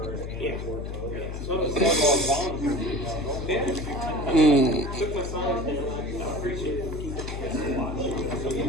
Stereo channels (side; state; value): left; noise; hum, 6 dB below the sound